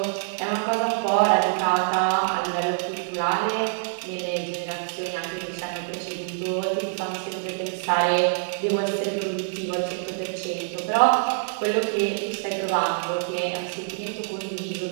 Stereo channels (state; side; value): silent; left; 61 dB below the other